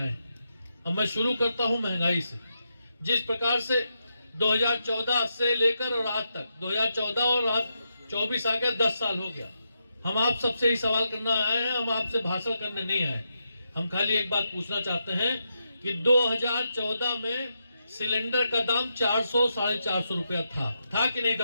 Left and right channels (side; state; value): both; inverted; correlation -0.84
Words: अब मैं शुरू करता हूं महंगाई से। जिस प्रकार से 2014 से लेकर और आज तक 2014 और आज 24 आ गया, 10 साल हो गया। हम आप सबसे ही सवाल करना आए हैं, हम आपसे भाषण करने नहीं आए। हम खाली एक बात पूछना चाहते हैं कि 2014 में सिलेंडर का दाम 400-450 रुपया था कि नहीं